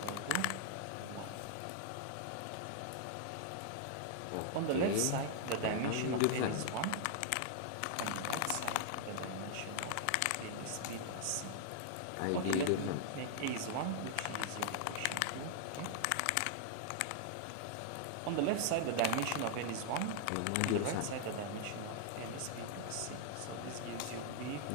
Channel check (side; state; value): both; different; correlation -0.01